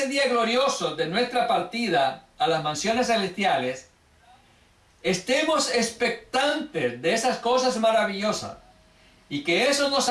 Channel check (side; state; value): both; identical; correlation 1.00